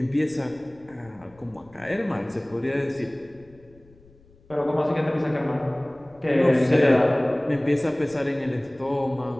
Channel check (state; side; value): noise; left; rumble, 27 dB below the sound